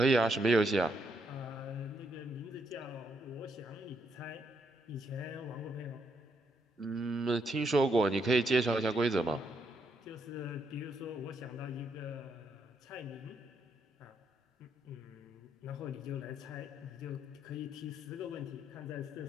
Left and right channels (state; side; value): normal; both; correlation 0.76